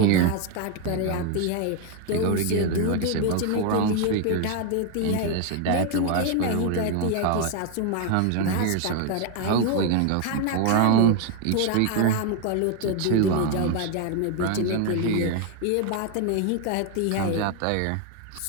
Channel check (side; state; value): both; different; correlation 0.01